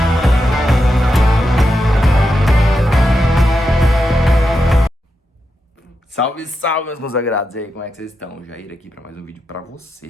Salve, salve, meus consagrados! E aí, como é que vocês estão? Jair aqui para mais um vídeo para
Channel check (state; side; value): normal; both; correlation 0.87